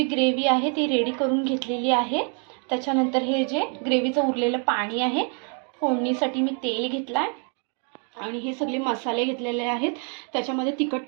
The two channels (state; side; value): quieter; left; 39.9 dB